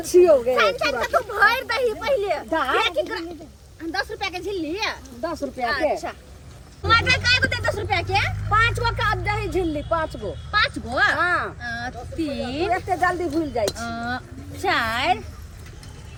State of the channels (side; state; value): both; identical; correlation 1.00